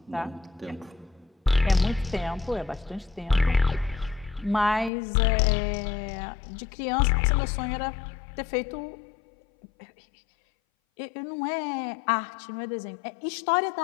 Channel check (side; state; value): right; drops out; at 4.9 s